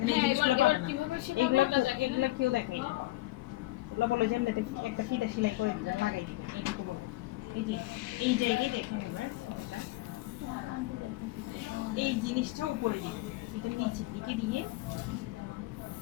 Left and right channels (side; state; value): right; quieter; 18.3 dB